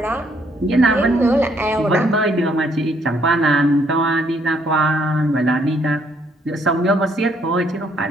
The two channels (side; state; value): both; normal; correlation 0.69